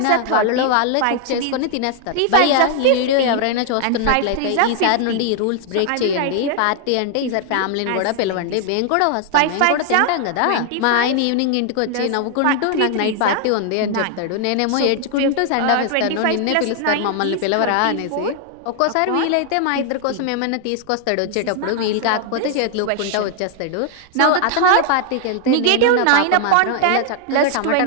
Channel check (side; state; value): both; different; correlation 0.00